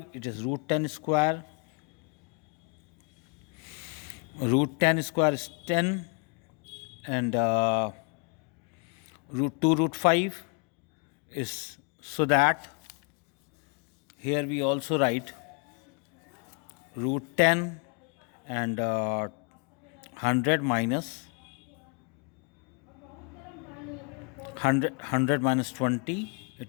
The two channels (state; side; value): quieter; right; 37.5 dB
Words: it is root 10 square. Root 10 square is 10, and root 2 root 5 is, so that here we also write root 10 and 100 minus 100 minus 20,